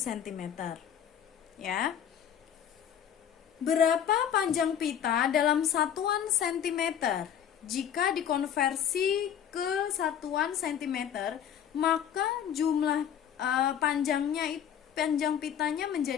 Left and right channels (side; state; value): right; quieter; 9.1 dB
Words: Ya. Berapa panjang pita dalam satuan sentimeter? Jika dikonversi ke satuan sentimeter, maka jumlah panjang pitanya